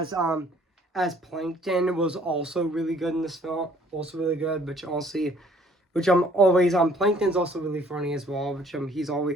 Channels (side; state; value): both; normal; correlation 0.59